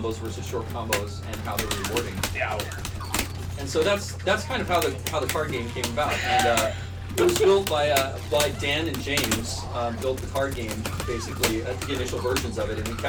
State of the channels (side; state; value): both; identical; correlation 1.00